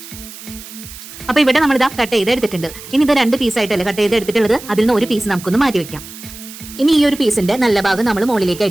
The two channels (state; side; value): noise; right; hiss, 15 dB below the sound